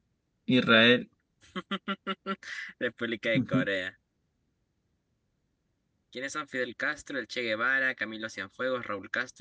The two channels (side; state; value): both; identical; correlation 1.00